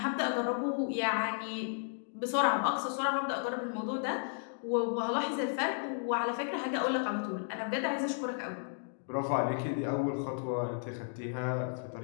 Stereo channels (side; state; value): right; silent; digital silence